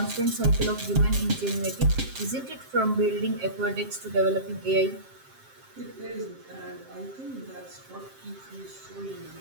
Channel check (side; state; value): left; late; 7.5 ms